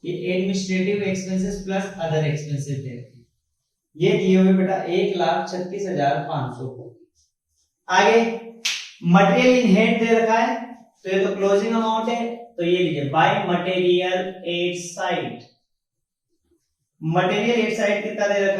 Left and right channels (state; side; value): identical; both; correlation 1.00